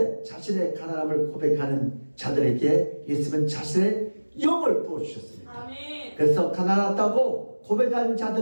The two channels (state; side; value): inverted; both; correlation -1.00